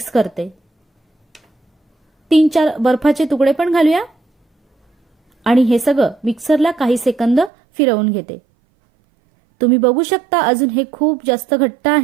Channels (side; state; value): left; drops out; at 7.5 s